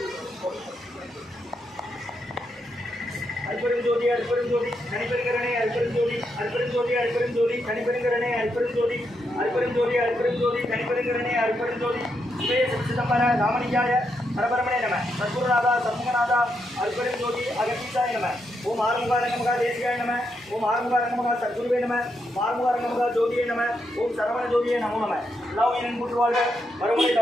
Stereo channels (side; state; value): both; normal; correlation 0.81